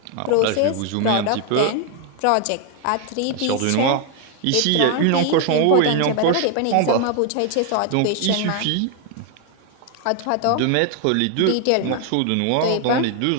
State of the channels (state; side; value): different; both; correlation 0.00